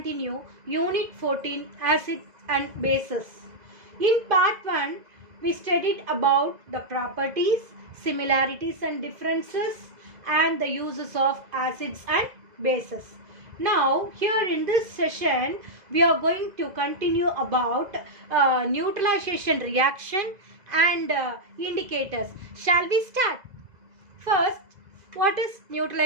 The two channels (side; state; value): left; late; 2.0 ms